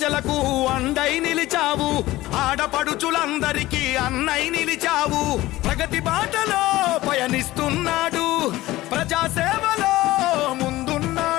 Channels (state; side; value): quieter; right; 17.3 dB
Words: అండై నిలిచావు, ఆడపడుచులందరికీ అన్నై నిలిచావు. ప్రగతి బాటలో పయనిస్తున్నాడు, ప్రజాసేవలో